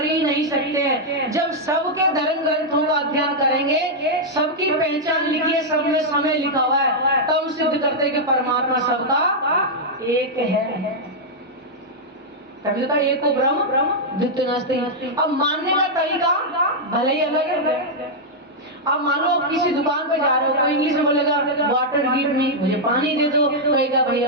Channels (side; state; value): both; normal; correlation -0.05